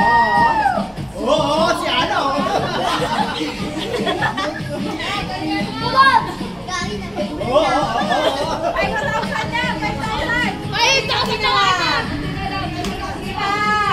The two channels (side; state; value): both; identical; correlation 1.00